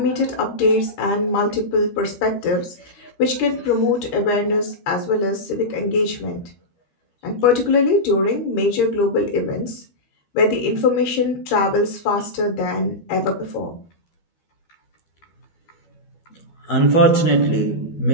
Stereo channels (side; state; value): right; late; 12 ms